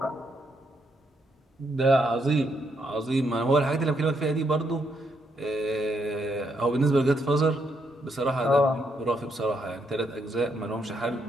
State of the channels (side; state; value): both; normal; correlation 0.77